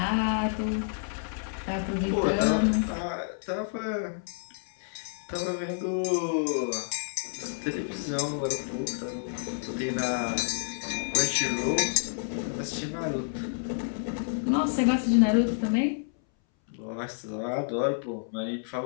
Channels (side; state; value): right; silent; 58 dB below the other